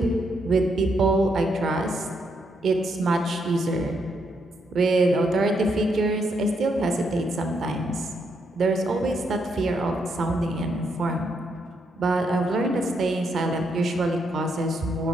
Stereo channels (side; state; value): both; normal; correlation 0.77